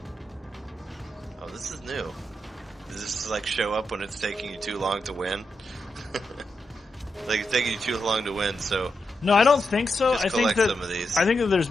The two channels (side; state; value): both; normal; correlation 0.86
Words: Oh, this is new. Does this, like, show up when it's taking you too long to win? Like, it's taking you too long to win, so... No, I don't think so. Just I think collect some of these. I think that there's